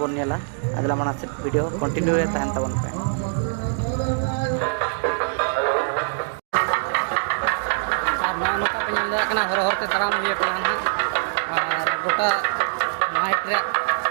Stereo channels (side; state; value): left; silent; digital silence